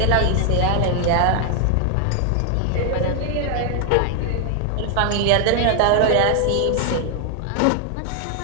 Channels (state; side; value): different; both; correlation 0.00